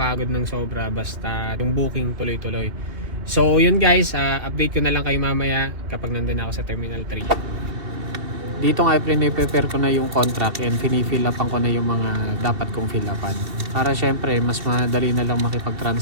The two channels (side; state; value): left; late; 2.7 ms